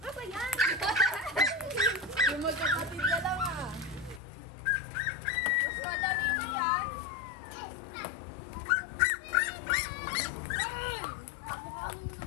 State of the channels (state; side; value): drops out; right; at 4.2 s